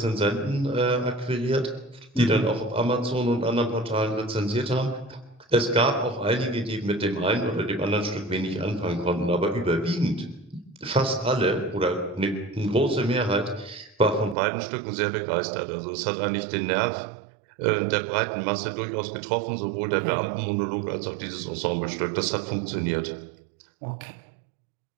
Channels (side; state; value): left; drops out; at 14.4 s